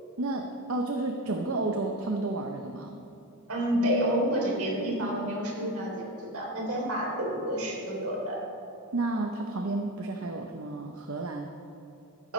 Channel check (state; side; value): normal; both; correlation 0.23